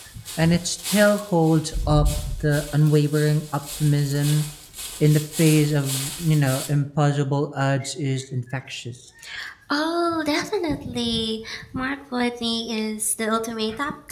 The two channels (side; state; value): both; identical; correlation 1.00